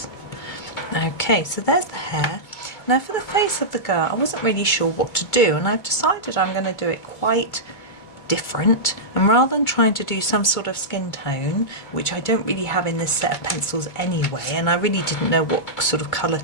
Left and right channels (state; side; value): late; right; 2.2 ms